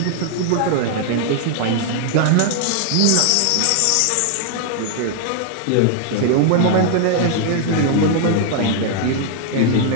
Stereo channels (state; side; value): different; both; correlation 0.00